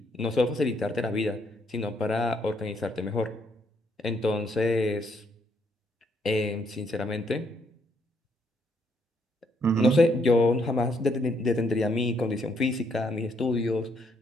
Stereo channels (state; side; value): normal; both; correlation 0.72